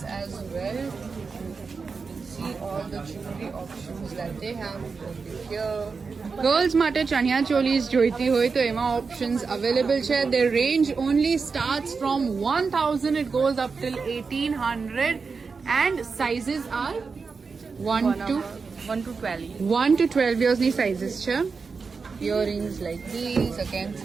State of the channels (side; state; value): left; quieter; 4.9 dB